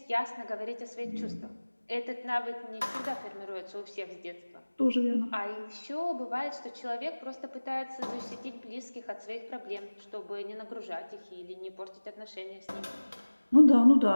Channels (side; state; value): both; inverted; correlation -1.00